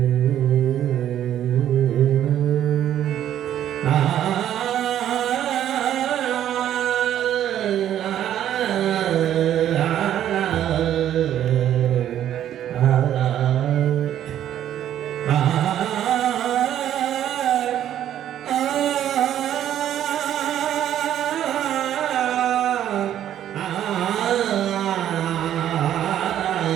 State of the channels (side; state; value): left; quieter; 11.0 dB